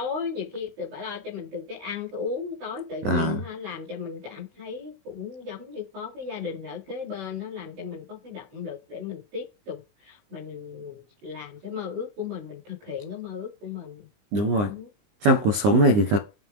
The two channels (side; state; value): left; late; 19 ms